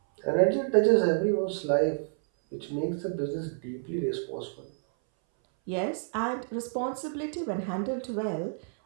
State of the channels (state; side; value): silent; left; 59 dB below the other